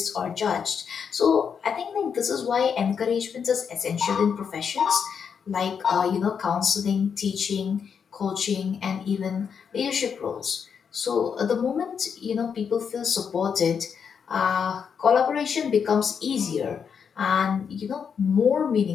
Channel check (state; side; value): quieter; right; 6.8 dB